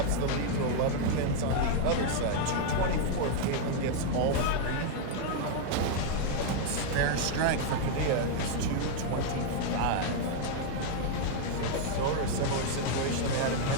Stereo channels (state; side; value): different; both; correlation 0.00